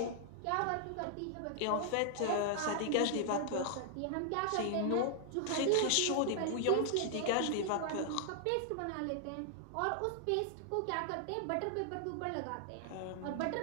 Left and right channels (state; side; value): different; both; correlation 0.00